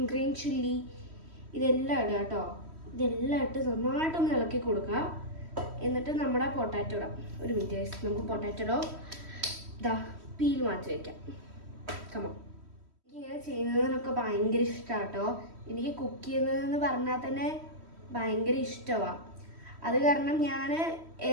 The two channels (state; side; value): late; left; 3.1 ms